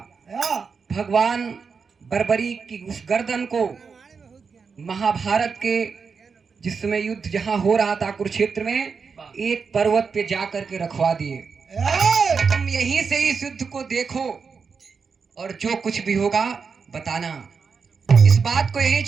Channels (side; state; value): left; quieter; 5.5 dB